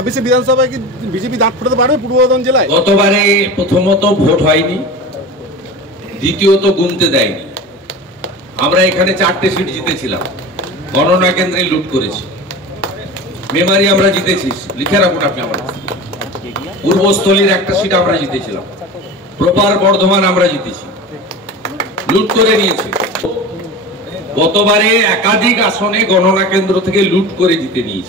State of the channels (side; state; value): both; normal; correlation 0.31